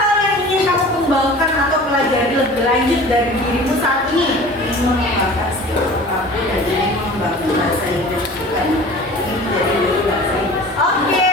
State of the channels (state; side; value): normal; both; correlation 0.42